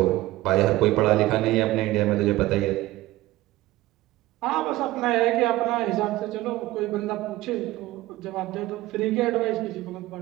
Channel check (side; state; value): left; quieter; 17.3 dB